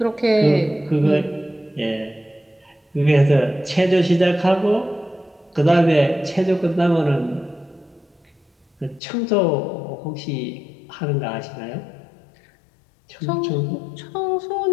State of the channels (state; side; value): drops out; right; at 9.0 s